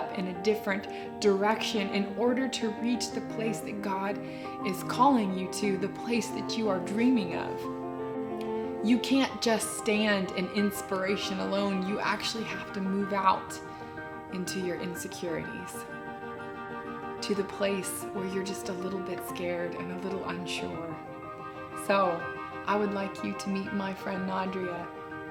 in a different direction in order to reach the place that God is calling you to, the place that you are dreaming of. You can't just stand in inspiration alone. You actually have to move out into your insecurities, to the place where you're just a little bit scared and a little unsure. So I would like you to meet my friend Nadria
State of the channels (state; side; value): identical; both; correlation 1.00